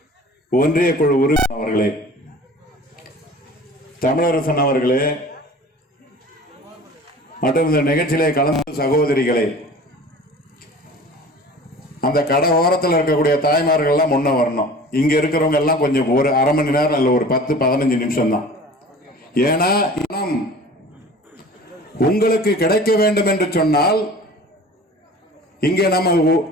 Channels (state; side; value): normal; both; correlation 0.42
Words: ஒன்றிய குழு உறுப்பினர் அவர்களே, தமிழரசன் அவர்களே மற்றும் இந்த நிகழ்ச்சியிலே கலந்து சகோதரிகளே, அந்த கடை ஓரத்தில் இருக்கக்கூடிய தாய்மார்கள் எல்லாம் முன்ன வரணும். இங்க இருக்கிறவங்க எல்லாம் கொஞ்சம் ஒரு அரை மணி நேரம் இல்ல, ஒரு 10-15 நிமிஷம் தான். ஏன்னா உங்களுக்கு கிடைக்க வேண்டும் என்று சொன்னால் இங்கே நம்ம